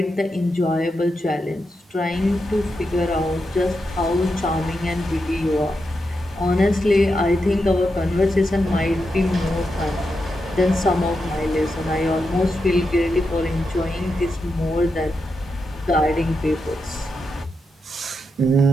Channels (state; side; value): normal; both; correlation 0.86